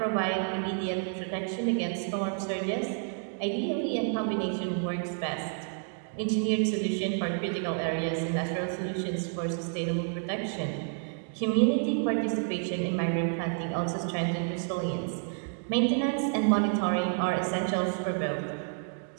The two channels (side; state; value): left; silent; 58 dB below the other